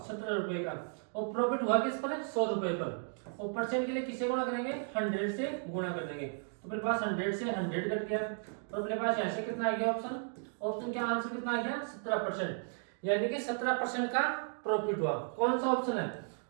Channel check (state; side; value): silent; left; 55 dB below the other